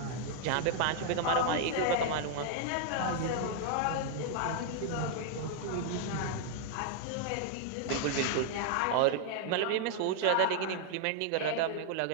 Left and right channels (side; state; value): both; different; correlation 0.00